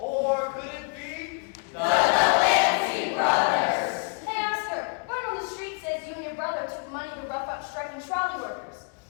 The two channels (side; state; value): right; quieter; 35.9 dB